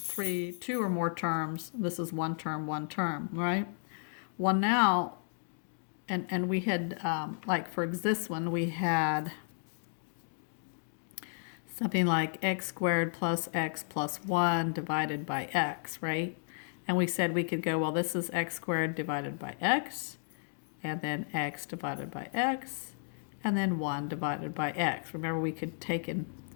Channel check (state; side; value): silent; right; digital silence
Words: two or more terms. This is one term, right? Well, now, and we had, like for this one, we had something like x squared plus x plus 1 divided by x, right? And we said we could go, well, this is x squared divided by x, and then x divided by x, and then 1 divided by x. Remember, we could take and